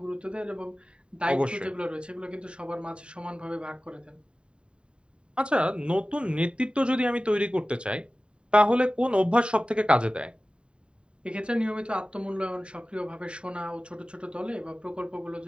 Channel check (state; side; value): late; left; 0.053 ms